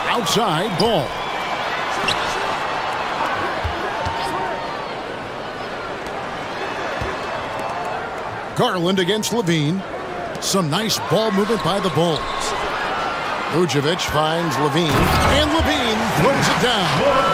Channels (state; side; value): identical; both; correlation 1.00